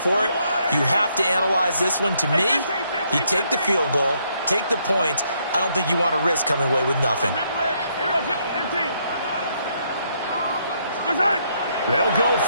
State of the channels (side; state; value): both; inverted; correlation -0.73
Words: it. You have to analyze this one. To me, you take the field goal, take the points. I don't think you want to risk coming away with nothing. They'll go